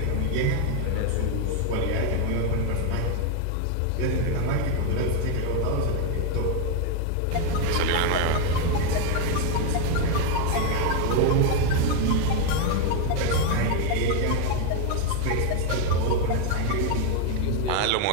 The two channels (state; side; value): different; both; correlation 0.01